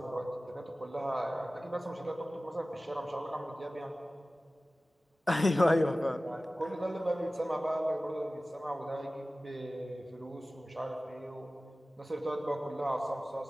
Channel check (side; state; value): both; normal; correlation 0.97